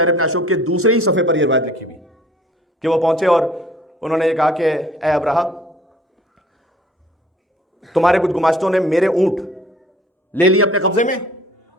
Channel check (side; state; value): both; normal; correlation 0.53